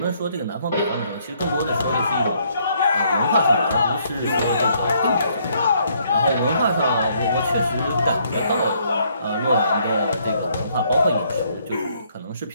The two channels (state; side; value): inverted; both; correlation -0.69